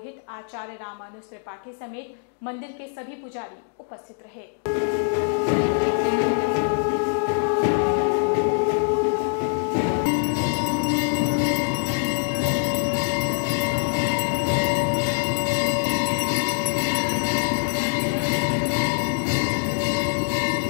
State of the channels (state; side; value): silent; right; 59 dB below the other